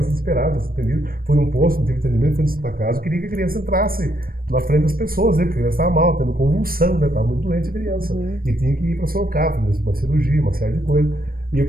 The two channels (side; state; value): left; late; 0.42 ms